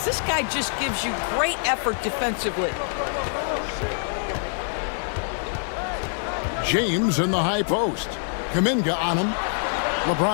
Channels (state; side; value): silent; right; digital silence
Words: This guy just gives you great effort defensively. James in the high post. Kuminga on him.